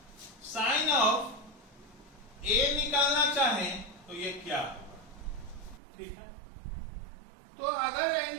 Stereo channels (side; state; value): left; drops out; at 5.8 s